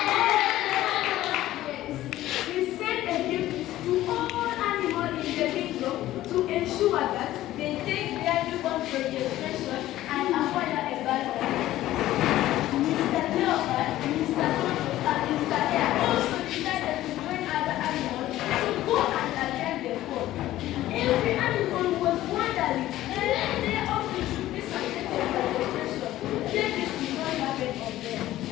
Yes. We send a gift to all animals in the kingdom to ensure that they take their newborn registration and acquire a birth. Mr. Leopard, Mr. Tortoise, and Mr. Hare also decided to join other animals to go and attend the court. Every animal was wondering when their office should be subjected to registration. Then this did not happen on them.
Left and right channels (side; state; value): right; quieter; 14.7 dB